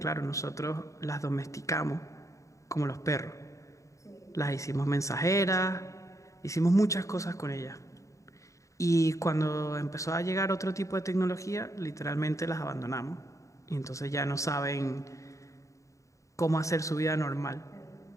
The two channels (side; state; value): right; late; 0.15 ms